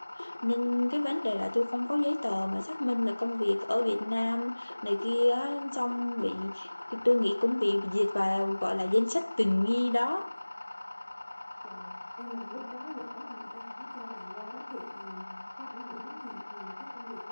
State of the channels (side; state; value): both; inverted; correlation -1.00